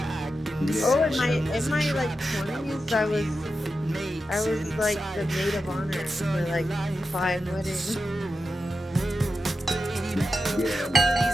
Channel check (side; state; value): both; normal; correlation 0.90